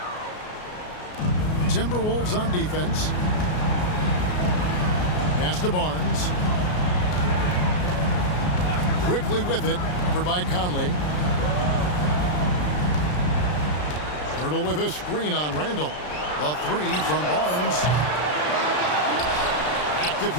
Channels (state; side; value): late; right; 33 ms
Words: Timberwolves on defense. Pass to Barnes. Quickly with it, covered by Conley. Hurdle with a screen on Randall. The three from Barnes. Active